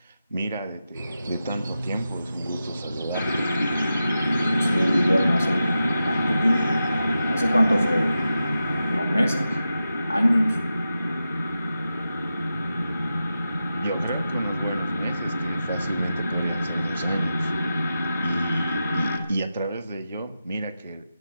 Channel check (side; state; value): both; inverted; correlation -0.91